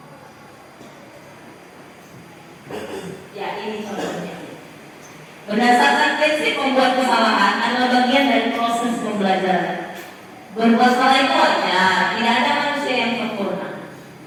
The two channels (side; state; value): both; identical; correlation 1.00